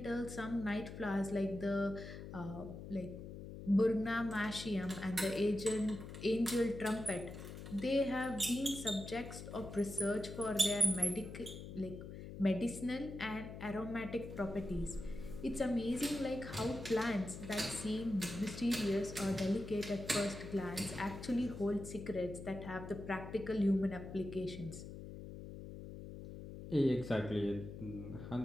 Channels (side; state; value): left; noise; hum, 10 dB below the sound